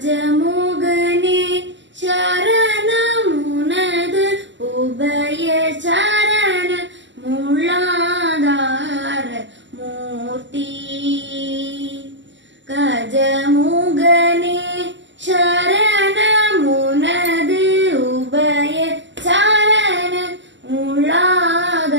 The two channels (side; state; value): left; late; 0.53 ms